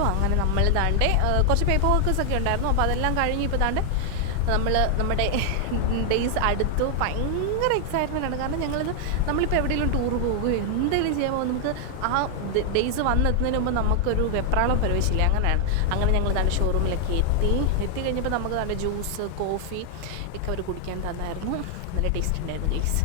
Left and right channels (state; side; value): different; both; correlation 0.00